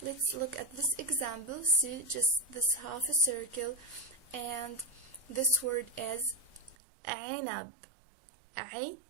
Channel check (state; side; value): drops out; left; at 6.8 s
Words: Let's look at this example. See, just this half a circle, and this word is Ainab.